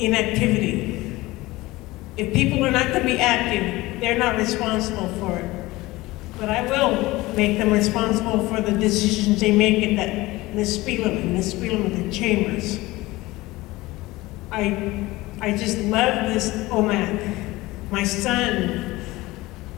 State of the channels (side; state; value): right; quieter; 19.7 dB